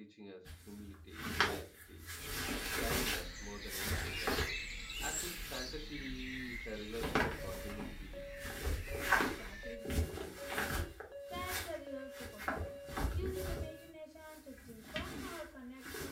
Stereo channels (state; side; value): identical; both; correlation 1.00